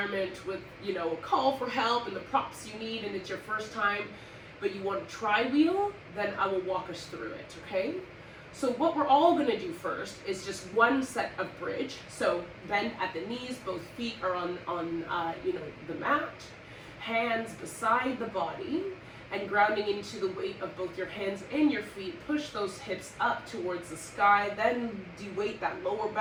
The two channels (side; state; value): both; identical; correlation 1.00